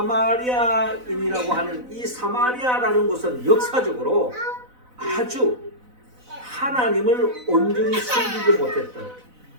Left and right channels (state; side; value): late; left; 4.0 ms